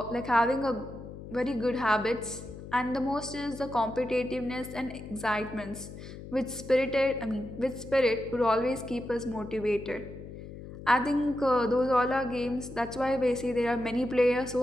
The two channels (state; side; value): noise; left; hum, 13 dB below the sound